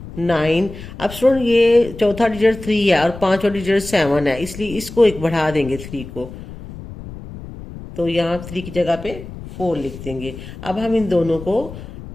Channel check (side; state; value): left; noise; rumble, 13 dB below the sound